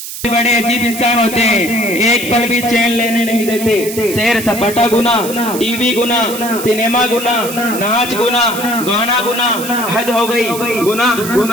बड़े अजीब इंसान होते हैं, एक पल भी चैन लेने नहीं देते। सैर सपाटा गुना, टीवी गुना, सिनेमा गुना, नाच गुना, गाना गुना, हद हो गई, गुना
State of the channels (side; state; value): right; noise; hiss, 9 dB below the sound